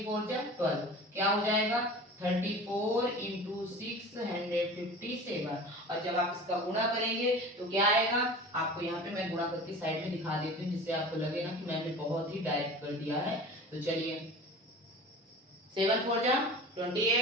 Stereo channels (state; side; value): normal; both; correlation 0.38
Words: 4 जा 12, क्या हो जाएगा 34 इंटू 657। और जब आप इसका गुणा करेंगे तो क्या आएगा, आपको यहाँ पे मैं गुणा करके साइड में दिखा देती हूँ जिससे आपको लगे ना कि मैंने बहुत ही डायरेक्ट कर दिया है। तो चलिए 7 4 जा